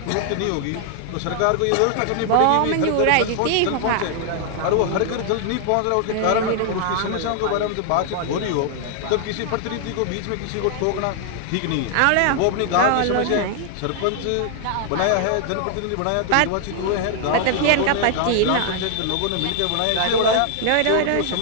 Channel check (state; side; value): different; both; correlation 0.00